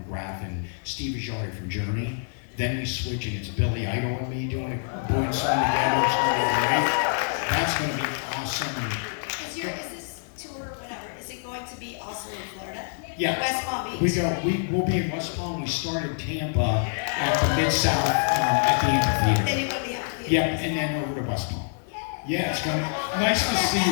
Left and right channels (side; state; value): right; silent; digital silence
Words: and Steve Ajari from Journey. Then we switch and it's Billy Idol and me doing it, doing something together. It's going to be great. That's going to be awesome. Is this tour, whatever, is it going to be also in Florida? Yeah, West Palm Beach? we'll be in West Palm. We started Tampa at the Mid-South at the amphitheater. Then you go to the amphitheater. Yep, and then over to West Palm. Yeah, it's gonna nice to see